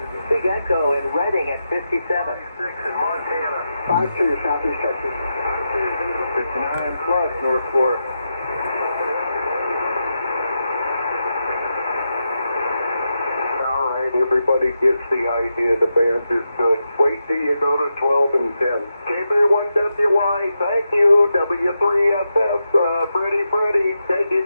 Big Echo in Reading at 57. 6 in Montana. 5-2, Southeast Texas. 59 plus, North Florida. All right, everybody gets the idea. The band is good. Wait till you go to 12 and 10. KB1WI, thank you. W3SF, Freddie, take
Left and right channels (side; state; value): both; inverted; correlation -0.87